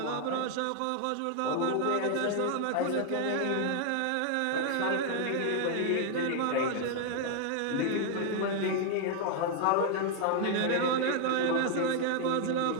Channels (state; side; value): different; both; correlation 0.00